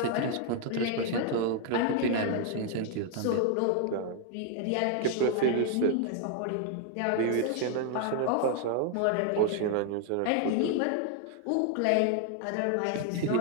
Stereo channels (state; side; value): different; both; correlation 0.00